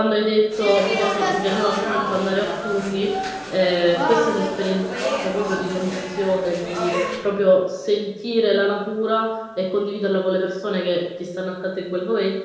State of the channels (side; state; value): both; identical; correlation 1.00